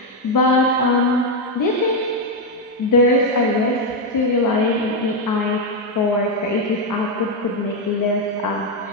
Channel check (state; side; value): normal; both; correlation 0.04